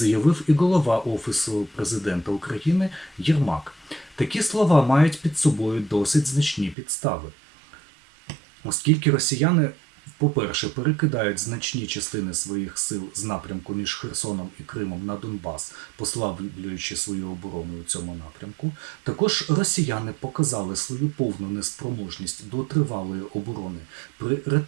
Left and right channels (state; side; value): drops out; left; at 6.8 s